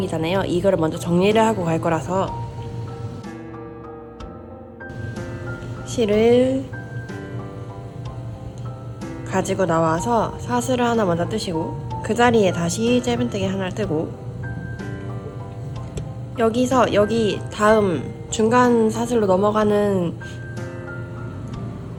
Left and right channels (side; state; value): both; identical; correlation 1.00